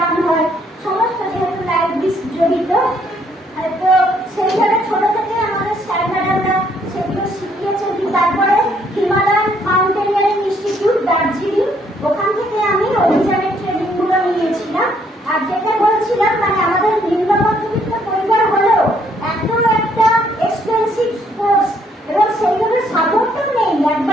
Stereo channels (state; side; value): normal; both; correlation 0.68